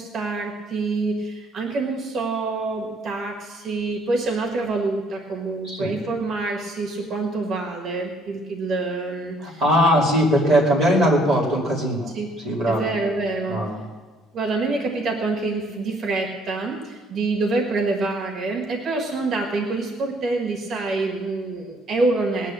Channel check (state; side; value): normal; both; correlation 0.63